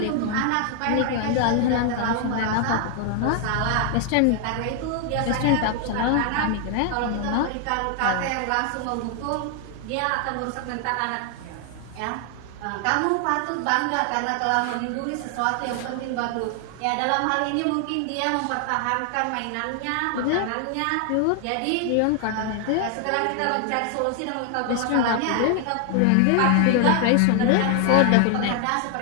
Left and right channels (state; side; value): different; both; correlation 0.00